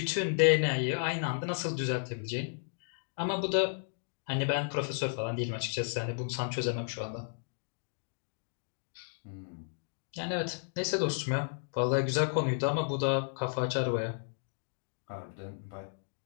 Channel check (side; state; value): right; silent; digital silence